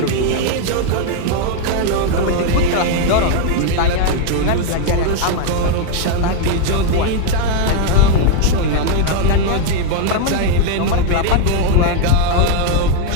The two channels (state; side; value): different; both; correlation 0.00